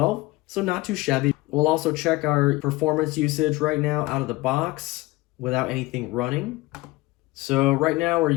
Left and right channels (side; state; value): right; quieter; 20.7 dB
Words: So not too shabby. We'll also check our performance usage right now out of the box without anything running. So right now we're